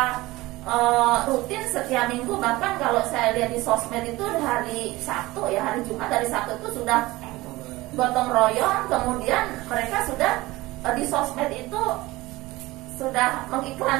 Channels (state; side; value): quieter; left; 19.6 dB